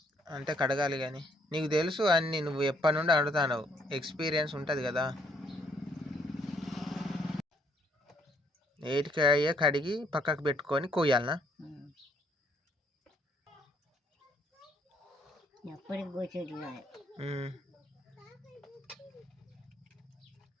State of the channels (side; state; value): both; normal; correlation 0.68